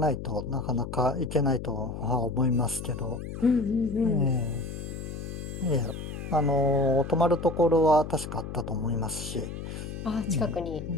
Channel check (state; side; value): noise; left; hum, 8 dB below the sound